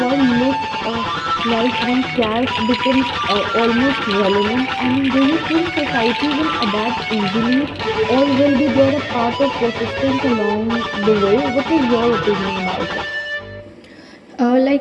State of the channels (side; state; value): both; identical; correlation 1.00